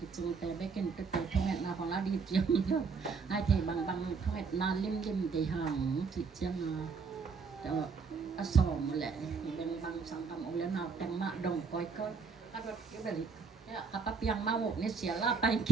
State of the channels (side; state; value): left; quieter; 5.1 dB